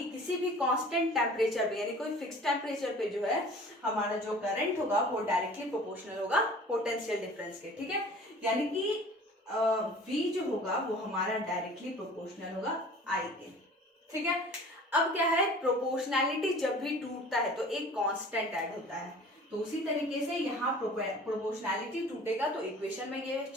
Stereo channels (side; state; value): both; normal; correlation 0.45